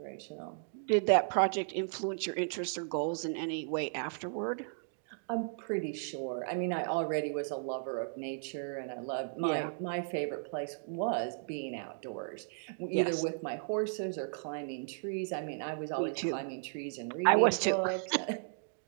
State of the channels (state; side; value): silent; left; digital silence